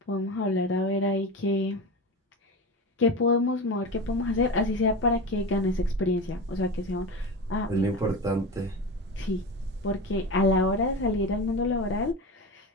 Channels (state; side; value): normal; both; correlation 0.25